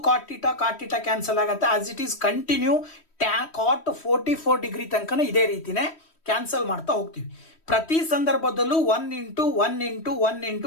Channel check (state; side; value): late; right; 3.1 ms